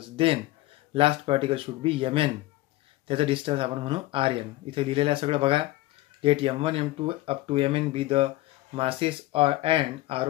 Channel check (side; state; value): right; quieter; 18.1 dB